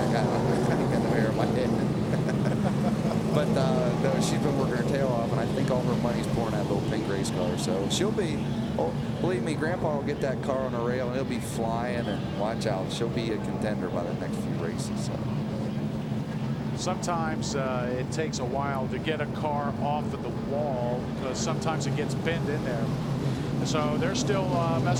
I don't know. I ain't got no hair on my head. But no, she's been working her tail off, and I think all her money's pouring that little pink race car. So she'll be, believe me, Grandpa will get that car on a rail, and he'll be flying, and watch out. She'll be a contender by the next few races. So. Sometimes it takes a while to get a car off of the wall because sometimes it gets bent in there. So they're still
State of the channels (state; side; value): identical; both; correlation 1.00